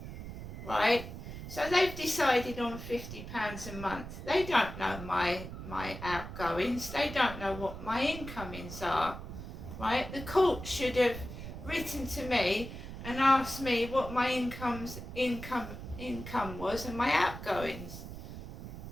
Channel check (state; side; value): noise; right; rumble, 10 dB below the sound